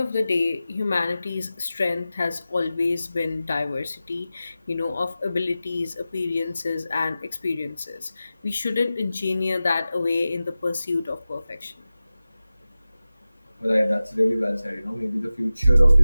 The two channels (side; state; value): both; inverted; correlation -0.95